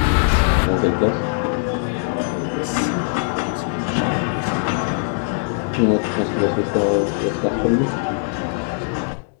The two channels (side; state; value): right; silent; 65 dB below the other